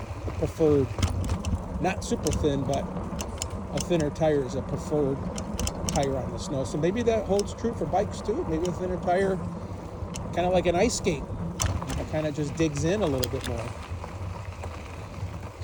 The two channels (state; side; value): identical; both; correlation 1.00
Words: preferred. Not super thin, but a thinner tire is a preferred tire on the snow. So maybe that holds true for bikes too. Maybe a thinner tire, kind of like an ice skate, it kind of just digs in a little bit more.